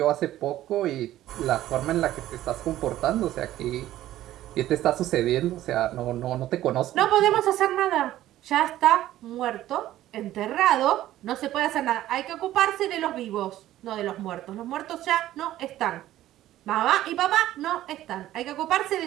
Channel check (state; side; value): quieter; left; 13.9 dB